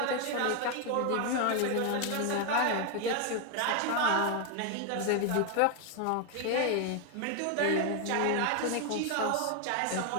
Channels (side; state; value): both; different; correlation 0.01